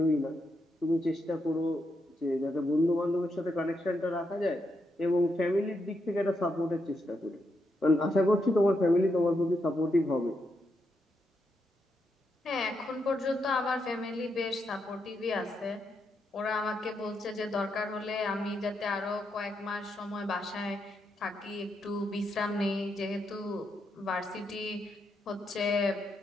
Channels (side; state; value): both; normal; correlation 0.81